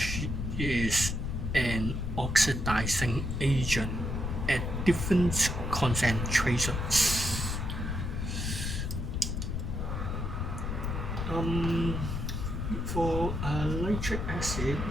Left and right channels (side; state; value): left; noise; rumble, 2 dB below the sound